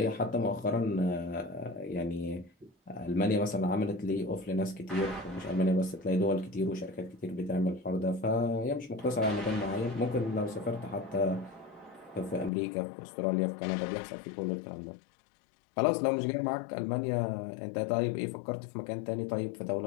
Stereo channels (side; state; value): right; drops out; at 12.5 s